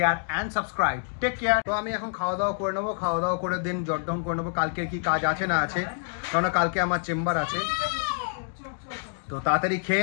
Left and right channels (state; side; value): silent; right; digital silence